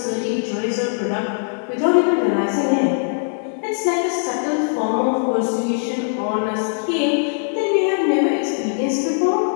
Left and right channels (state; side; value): silent; right; 57 dB below the other